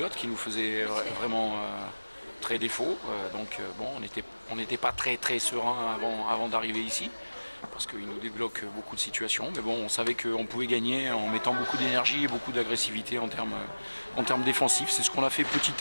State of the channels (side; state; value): both; inverted; correlation -1.00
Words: qui nous faisait vraiment très défaut. Bon, on n'était pas très serein avant d'arriver ici, parce qu'il nous débloque beaucoup de situations. Mais bon, on savait qu'on pouvait gagner en mettant beaucoup d'énergie et beaucoup d'agressivité en termes défensifs. C'est ce qu'on a fait